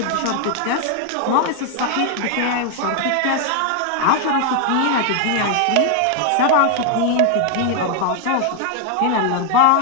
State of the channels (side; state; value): both; different; correlation 0.00